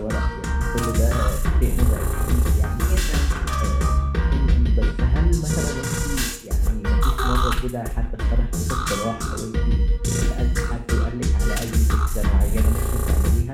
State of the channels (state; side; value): identical; both; correlation 1.00